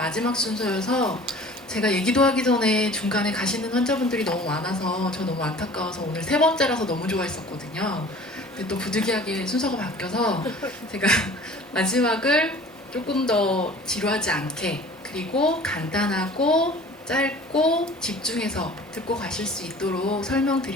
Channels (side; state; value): both; normal; correlation 0.45